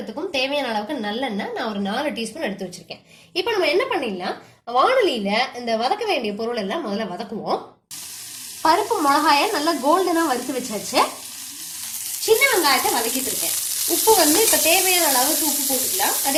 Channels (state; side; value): identical; both; correlation 1.00